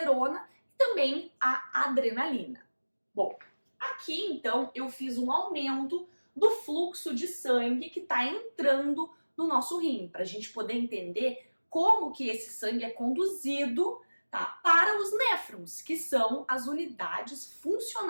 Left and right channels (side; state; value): both; inverted; correlation -1.00